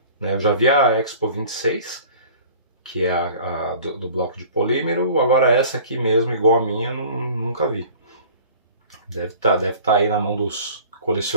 né? Eu já vi a Expo 26, que é a do bloco de polímero. Agora essa aqui mesmo, igual a minha, eu nunca vi. Deve tá aí na mão dos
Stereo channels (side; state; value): both; inverted; correlation -0.46